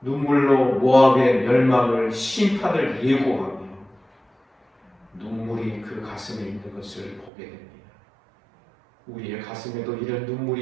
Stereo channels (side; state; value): left; drops out; at 7.3 s